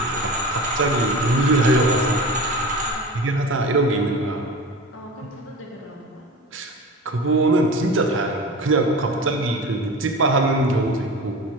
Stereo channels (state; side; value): normal; both; correlation 0.32